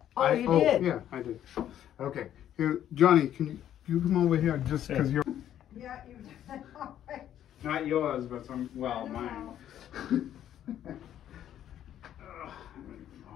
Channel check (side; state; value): right; quieter; 10.9 dB